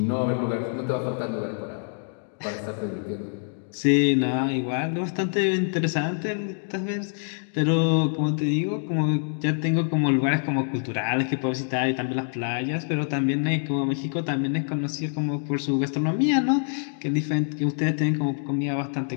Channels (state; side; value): silent; right; 61 dB below the other